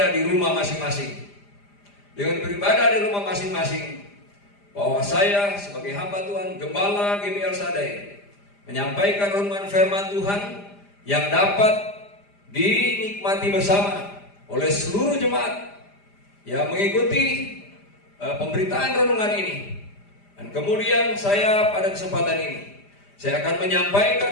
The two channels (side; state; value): right; late; 5.0 ms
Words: di rumah masing-masing. Dengan beribadah di rumah masing-masing, bahwa saya sebagai hamba Tuhan, Gembala GBI El Shaddai, menyampaikan renungan firman Tuhan yang dapat dinikmati bersama oleh seluruh jemaat yang mengikuti pemberitaan renungan ini. Dan kemudian saya pada kesempatan ini, saya akan